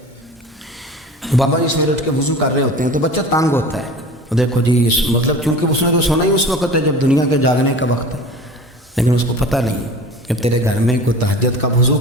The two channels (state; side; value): normal; both; correlation 0.39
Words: بابا جی سویرے اٹھ کے وضو کر رہے ہوتے ہیں تو بچہ تانگ ہوتا ہے، دیکھو جی مطلب چونکہ اس نے تو سونا ہی اس وقت ہے جب دنیا کے جاگنے کا وقت ہے، لیکن اس کو پتہ نہیں کہ تیرے گھر میں کوئی تہجد کا وضو